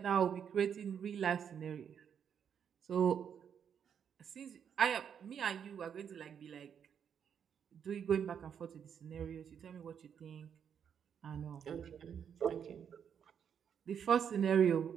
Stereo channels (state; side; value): quieter; left; 7.9 dB